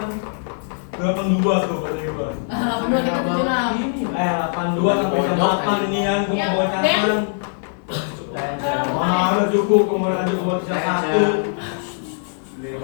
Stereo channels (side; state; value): right; silent; digital silence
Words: 82 tuh kata gue. 82 kita 76. 82 sampai jam 8 ini kan gue mau bonyakan. Mana ada cukup, kemudian ada buat satu.